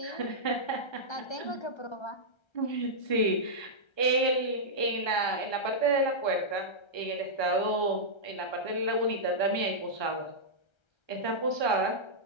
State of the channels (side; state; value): right; late; 1.3 ms